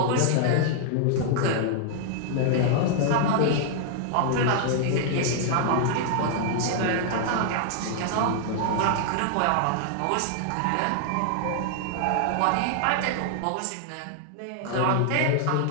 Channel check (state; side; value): different; both; correlation 0.00